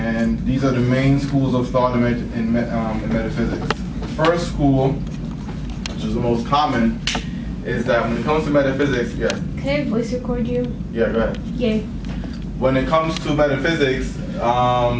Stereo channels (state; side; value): identical; both; correlation 1.00